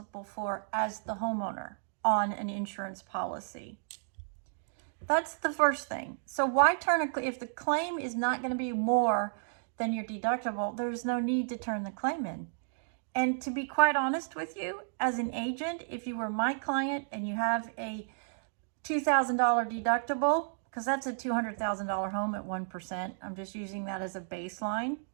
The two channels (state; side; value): silent; left; digital silence